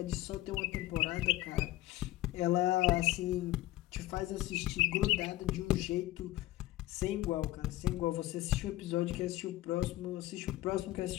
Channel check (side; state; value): right; quieter; 16.6 dB